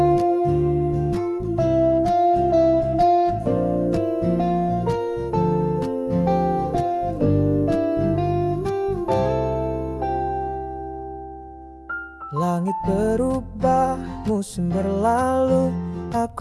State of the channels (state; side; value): identical; both; correlation 1.00